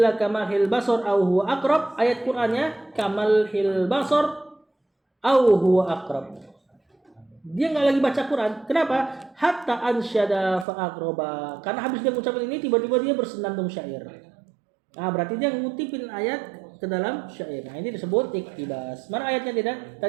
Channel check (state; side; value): drops out; left; at 10.7 s